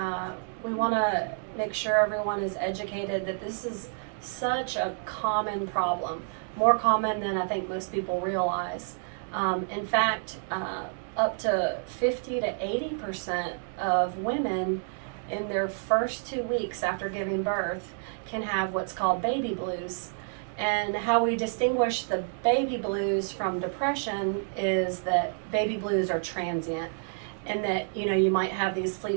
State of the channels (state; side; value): silent; left; 59 dB below the other